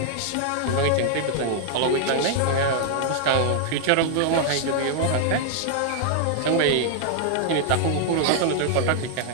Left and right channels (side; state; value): both; different; correlation -0.01